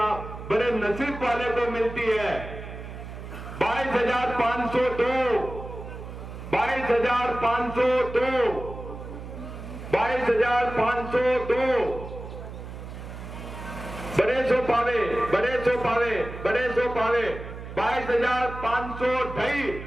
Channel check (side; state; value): right; noise; hum, 11 dB below the sound